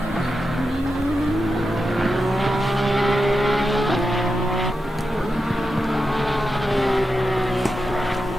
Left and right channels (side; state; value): both; normal; correlation 0.89